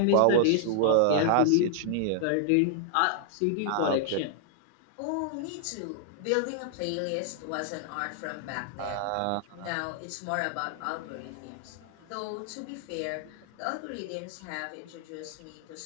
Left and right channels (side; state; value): both; different; correlation -0.01